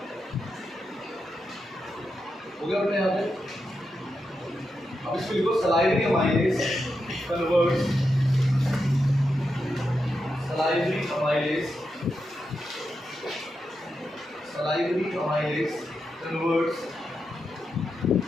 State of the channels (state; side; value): normal; both; correlation 0.87